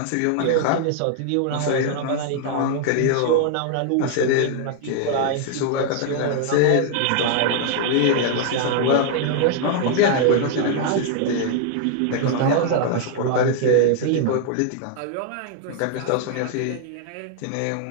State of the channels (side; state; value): both; different; correlation 0.00